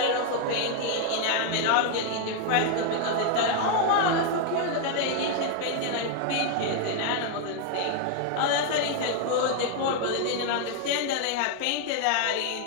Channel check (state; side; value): different; both; correlation 0.00